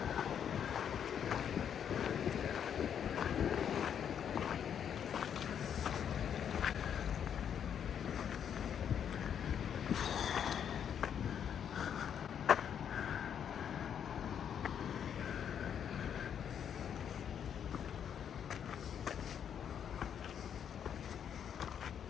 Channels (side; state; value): right; quieter; 8.5 dB